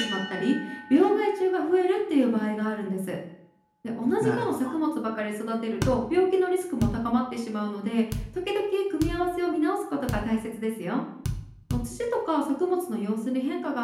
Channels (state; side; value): identical; both; correlation 1.00